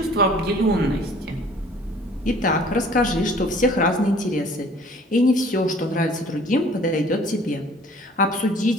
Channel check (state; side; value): normal; both; correlation 0.52